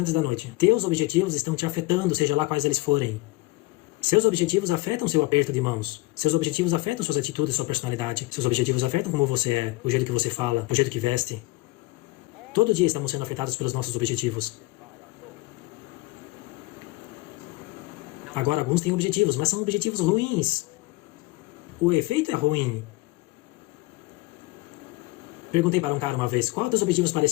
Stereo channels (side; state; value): right; quieter; 21.0 dB